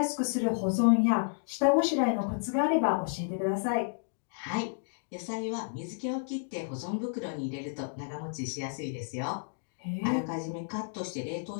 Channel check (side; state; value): right; silent; digital silence